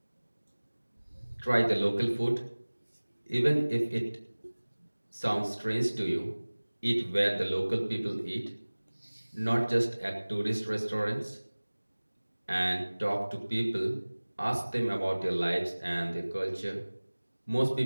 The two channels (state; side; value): inverted; both; correlation -1.00